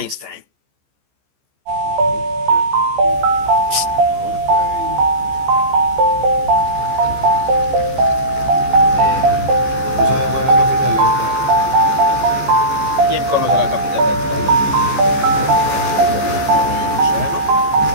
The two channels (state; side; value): late; left; 14 ms